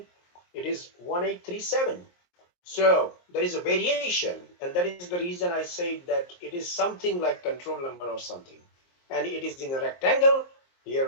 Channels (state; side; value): late; right; 23 ms